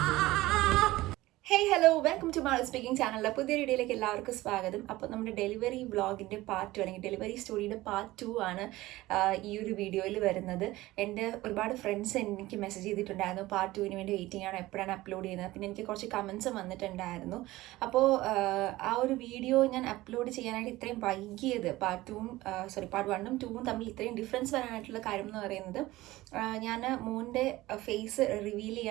Hey hello, welcome to mall speaking ചാനലിലെ പുതിയ വീഡിയോയിലേക്ക് എല്ലാവർക്കും സ്വാഗതം. അപ്പോൾ നമ്മുടെ ഡെലിവറി വ്ളോഗിൻ്റെ പാർട്ട് 2 അല്ലെങ്കിൽ ഡെലിവറി സ്റ്റോറിയുടെ പാർട്ട് 2 ആണ് ഈ ഒരു വീഡിയോയിൽ വരുന്നത്. എൻ്റെ ഒരുപാട് ഫ്രണ്ട്സ് എനിക്ക് മെസ്സേജ് ചെയ്തിട്ടുണ്ടായിരുന്നു പാർട്ട് 2 വേണ്ടി വെയിറ്റിംഗ് ആണ്, എപ്പോഴാണ് അപ്ലോഡ് ചെയ്യുന്നത്. പിന്നെ എനിക്ക് കുറച്ച് കമൻസും വന്നിട്ടുണ്ടായിരുന്നു. അപ്പോൾ ആ ഒരു വീഡിയോ ഞാൻ അപ്ലോഡ് ചെയ്യാനായിട്ട് ഇത്രയും വൈകിയത് പാർട്ട് 1ഉം 2ഉം തമ്മിൽ ഇത്രയും ഡിഫറൻസ് വരാനായിട്ടുള്ള കാര്യം എന്ന് പറയുന്നത്, ഞാൻ മോൻ്റെ ഫേസ് റിവീൽ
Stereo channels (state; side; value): quieter; left; 18.0 dB